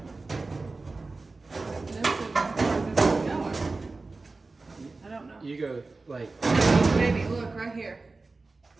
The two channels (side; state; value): left; quieter; 3.6 dB